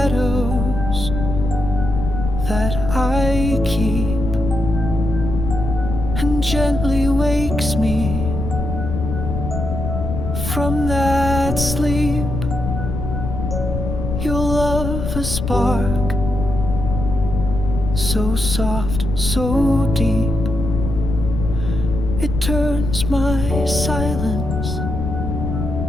that I keep and gently wakes me from that sleep. Your love a spark, so soft, so deep, it turns my silence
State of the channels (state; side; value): noise; left; rumble, 4 dB below the sound